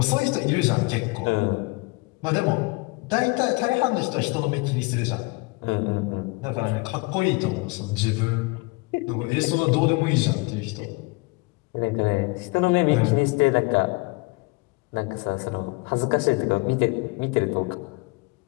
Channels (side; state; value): right; quieter; 26.1 dB